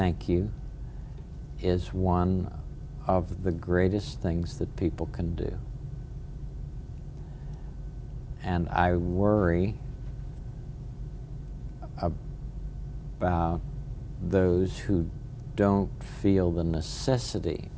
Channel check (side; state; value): both; identical; correlation 1.00